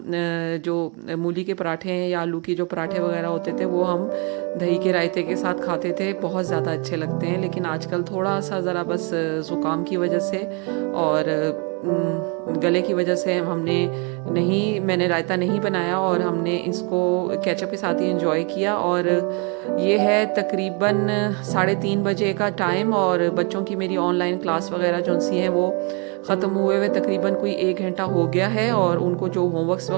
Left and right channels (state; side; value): quieter; left; 33.7 dB